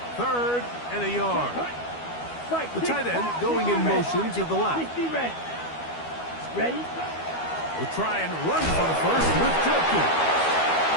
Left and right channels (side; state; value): right; late; 12 ms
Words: Third and a yard. The tight end going in motion to the left. Ready? Will try and run for the first with Judkins.